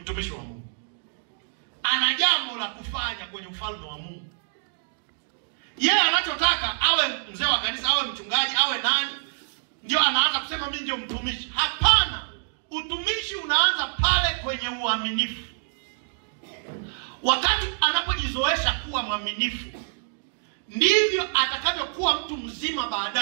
wa Mungu, ana jambo la kufanya kwenye ufalme wa Mungu. Yeye anachotaka awe mzee wa kanisa, awe mchungaji, awe nani, ndio anaanza kusema mimi ndio mtumishi. Hapana, utumishi unaanza pale kwenye uaminifu. Wakati anapojizoesha kuwa mwaminifu, ndivyo atakavyokuwa mtu mzima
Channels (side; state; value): left; silent; digital silence